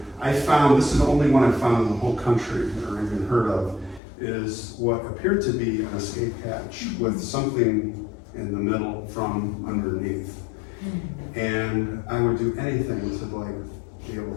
This is the only one I found in the whole country or even heard of, is what appeared to be an escape hatch with something in the middle from underneath. And I would do anything to be able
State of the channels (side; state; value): right; drops out; at 4.0 s